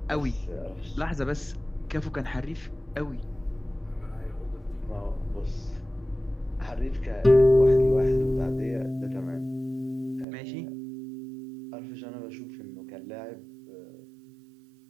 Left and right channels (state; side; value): drops out; left; at 10.2 s